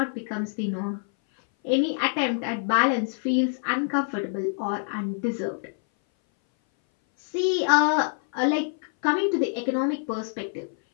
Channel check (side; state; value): right; silent; 58 dB below the other